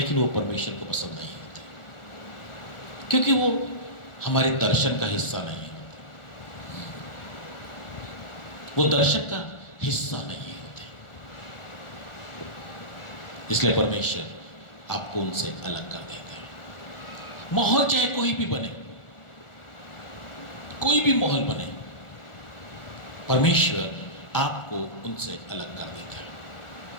वो परमेश्वर को पसंद नहीं होते, क्योंकि वो हमारे दर्शन का हिस्सा नहीं होते, वो दर्शन का हिस्सा नहीं होते। इसलिए परमेश्वर आपको उनसे अलग कर देता है। माहौल चाहे कोई भी बने, कोई भी माहौल बने, परमेश्वर आपको उनसे अलग कर देता है।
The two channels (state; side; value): late; right; 1.4 ms